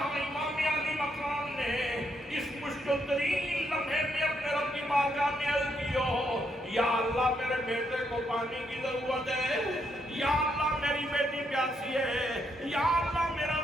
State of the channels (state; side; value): normal; both; correlation 0.76